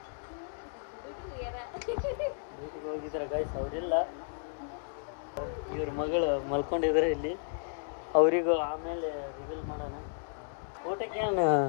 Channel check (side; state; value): right; silent; digital silence